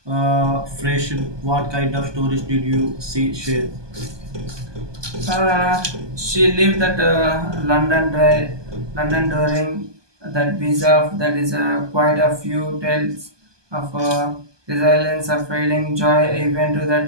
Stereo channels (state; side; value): late; left; 1.2 ms